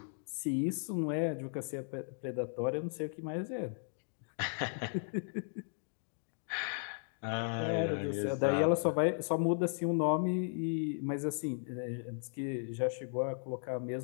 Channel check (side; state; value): right; silent; digital silence